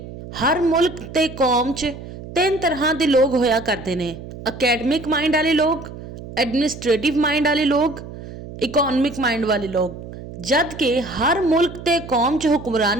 ਹਰ ਮੁਲਕ ਤੇ ਕੌਮ 'ਚ ਤਿੰਨ ਤਰ੍ਹਾਂ ਦੇ ਲੋਕ ਹੋਇਆ ਕਰਦੇ ਨੇ। ਅਕੈਡਮਿਕ ਮਾइंड वाले लोग, एडमिनिस्ट्रेटिव माइंड वाले लोग, इकोनॉमिक माइंड वाले लोग। जद कि हर मुल्क ते कौम च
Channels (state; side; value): noise; right; hum, 13 dB below the sound